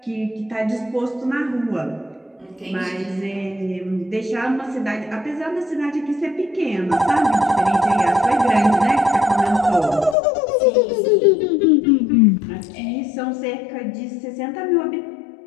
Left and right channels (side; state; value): right; drops out; at 10.2 s